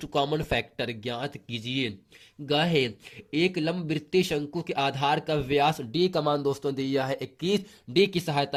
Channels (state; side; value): identical; both; correlation 1.00